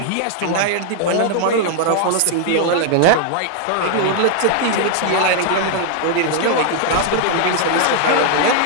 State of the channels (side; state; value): both; different; correlation 0.00